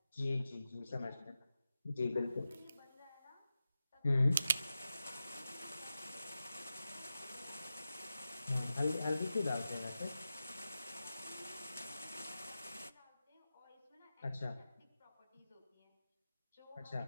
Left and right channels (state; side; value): inverted; both; correlation -0.92